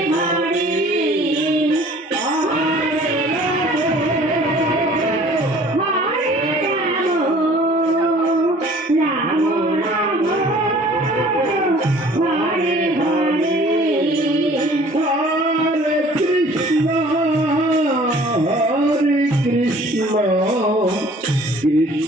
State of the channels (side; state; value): both; normal; correlation 0.51